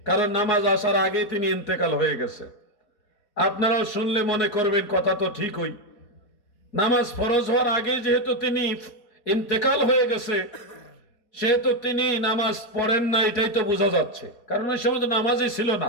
কারণ নামাজ আসার আগেই তিনি ইন্তেকাল হয়ে গেছে। আপনারাও শুনলে মনে করবেন কথা তো ঠিকই। নামাজ ফরজ হওয়ার আগে যেহেতু তিনি ইন্তেকাল হয়ে গেছে, সেহেতু তিনি নামাজ পড়েন না, এটাই তো বোঝা যাচ্ছে। কারণ ওই সময় তো নামাজই ছিল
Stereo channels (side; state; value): right; late; 4.2 ms